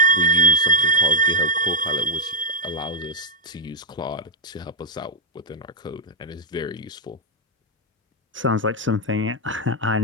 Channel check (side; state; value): both; normal; correlation -0.02